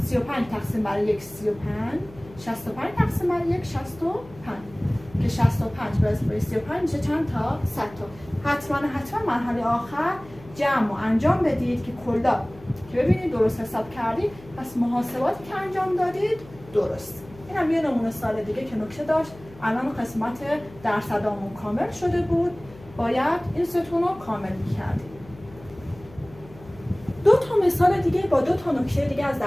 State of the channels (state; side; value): noise; left; hum, 20 dB below the sound